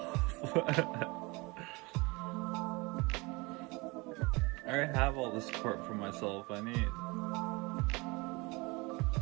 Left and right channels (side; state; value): left; quieter; 25.5 dB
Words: I already have all the support for myself I need.